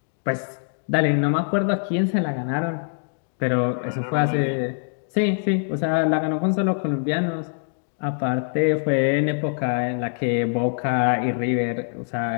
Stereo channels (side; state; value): right; silent; digital silence